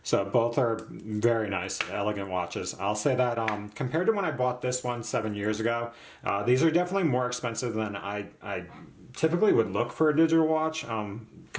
So both are very nice, elegant watches. I'll say that compared to when I bought this one 7 years ago, these are definitely more expensive than I typically would look for a digital watch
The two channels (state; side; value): identical; both; correlation 1.00